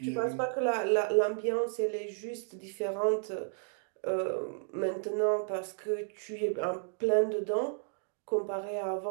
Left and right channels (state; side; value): silent; left; digital silence